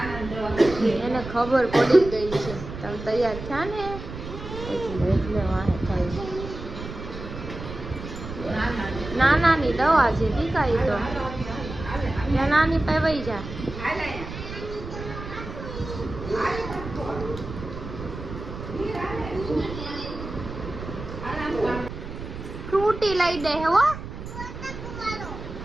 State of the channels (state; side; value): noise; right; rumble, 10 dB below the sound